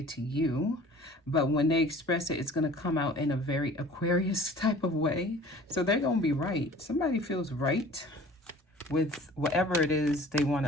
to you, but when they express it, it's going to come out in a very Aquarius type of way. So they're going to be right. Somebody feels right with whatever it is they want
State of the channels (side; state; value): both; normal; correlation 0.46